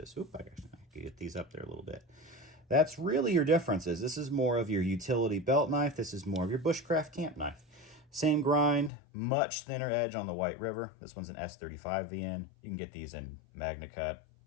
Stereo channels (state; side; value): drops out; right; at 8.9 s